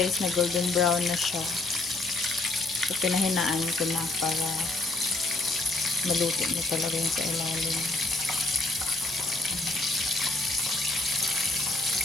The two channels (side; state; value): right; quieter; 3.1 dB